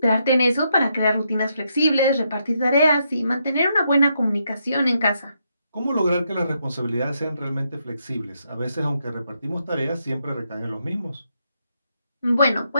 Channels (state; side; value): inverted; both; correlation -0.78